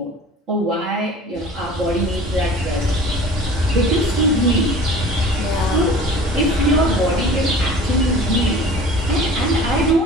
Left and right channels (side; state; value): both; normal; correlation 0.43